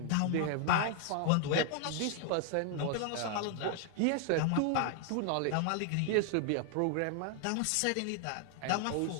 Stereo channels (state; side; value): different; both; correlation 0.00